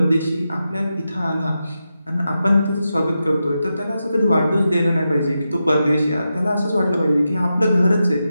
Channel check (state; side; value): inverted; both; correlation -0.89